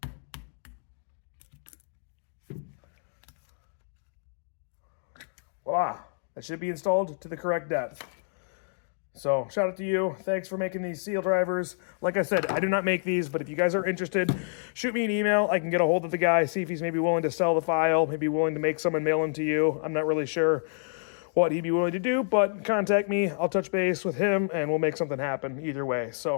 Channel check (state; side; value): silent; right; digital silence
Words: Voila, that should be installed to the correct depth. So shout out to you. Thanks for making these seal drivers. Like I said, I do not make these, but if you guys are interested, shoot me an email. I can get a hold of the guy, see if he's maybe willing to sell the file, maybe willing to make some and mail them to you. I'm not really sure what he'd be willing to do, but contact me. I'll touch base with him and we'll make something happen either way.